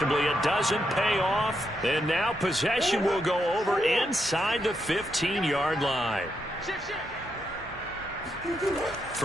it doesn't pay off. And now possession will go over inside the 15-yard line.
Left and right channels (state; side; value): normal; both; correlation 0.82